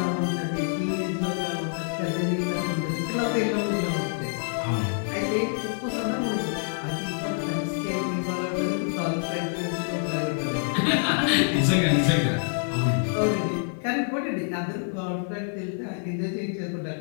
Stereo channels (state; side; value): silent; right; 60 dB below the other